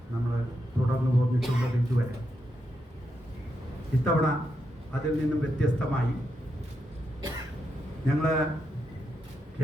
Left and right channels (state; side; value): normal; both; correlation 0.83